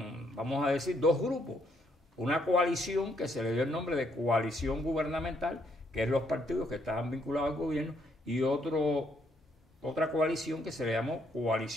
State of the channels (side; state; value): both; normal; correlation 0.72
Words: vamos a decir, dos grupos. Una coalición que se le dio el nombre de coalición gubernamental, que es los partidos que estaban vinculados al gobierno, y otra coalición que se le llamó